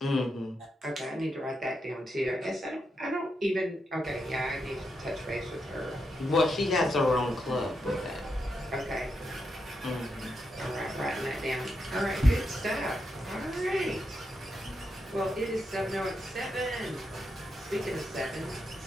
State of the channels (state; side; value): normal; both; correlation 0.84